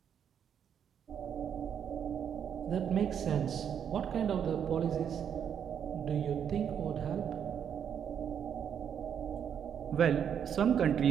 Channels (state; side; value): quieter; left; 8.3 dB